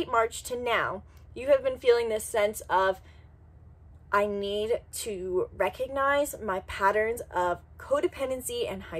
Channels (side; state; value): both; identical; correlation 1.00